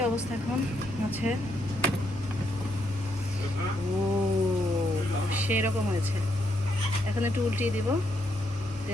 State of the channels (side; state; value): both; normal; correlation 0.77